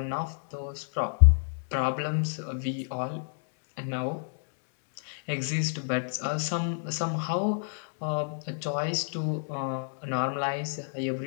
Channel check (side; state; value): right; silent; digital silence